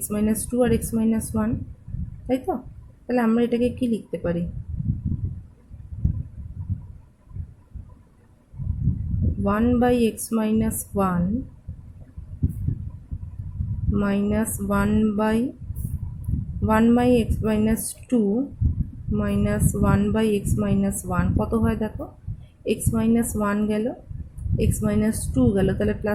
- 2 আর x - 1, তাই তো? তাহলে আমরা এটাকে কি লিখতে পারি, 1/x - 1 minus 1/x - 2 minus 1/x - 1 কত হয় দেখো, x-1 গেল, x-2 গেল, তাহলে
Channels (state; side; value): identical; both; correlation 1.00